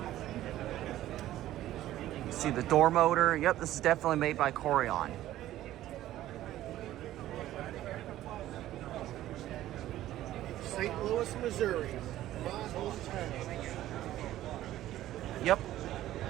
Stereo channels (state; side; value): quieter; left; 14.0 dB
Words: See the door motor. Yep, this is definitely made by Courion. St. Louis, Missouri, my hometown. Yep.